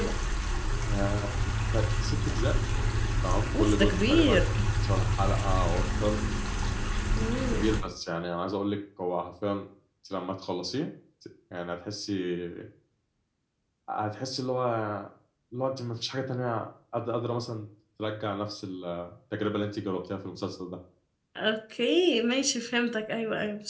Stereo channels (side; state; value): both; identical; correlation 1.00